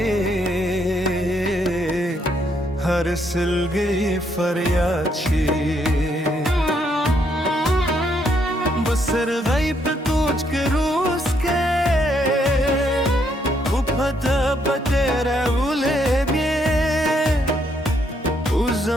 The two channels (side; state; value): both; normal; correlation 0.73